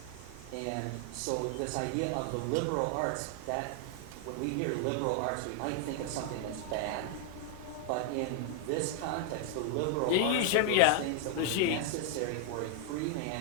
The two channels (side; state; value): both; different; correlation 0.00